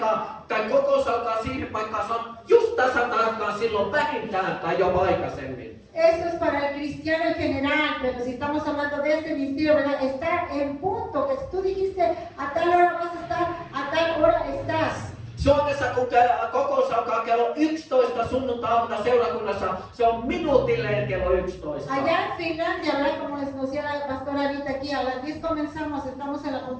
tai kokous alkaa siihen paikkaan, se on just tasan tarkkaan silloin vähintään tai jopa aikaisemmin. Esto es para el cristiano en general, pero si estamos hablando de este ministerio, ¿verdad? Estar en punto, que si tú dijiste a tal hora vas a estar, a tal hora estás. Suomessa kun kokous alkaa kello 11 sunnuntai-aamuna seurakunnassa, se on minuutilleen kello 11. Allá en Finlandia, ¿verdad? Como les decía la pastora ahorita aquí, a las 10 comenzamos, estamos en la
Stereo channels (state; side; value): identical; both; correlation 1.00